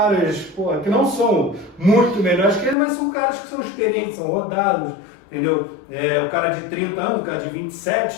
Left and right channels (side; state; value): right; drops out; at 2.8 s